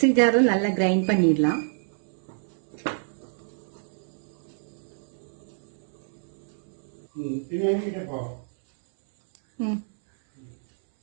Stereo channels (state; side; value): silent; left; 60 dB below the other